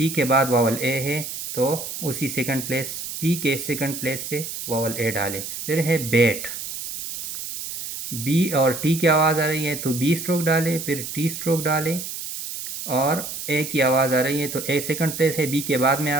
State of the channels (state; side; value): noise; right; hiss, 7 dB below the sound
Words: کے بعد واول اے ہے تو اسی سیکنڈ پلیس، پی کے سیکنڈ پلیس پہ واول اے ڈالیں۔ پھر ہے بیٹ، بی اور ٹی کی آواز آ رہی ہے تو بی اسٹروک ڈالیں، پھر ٹی اسٹروک ڈالیں، اور اے کی آواز آ رہی ہے تو اے سیکنڈ پلیس ہے، بی کے بعد میں